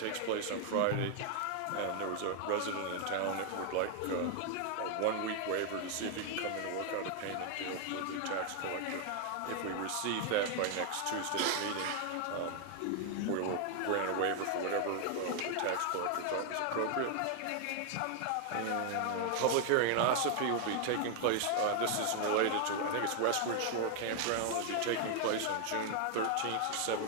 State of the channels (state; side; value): different; both; correlation 0.00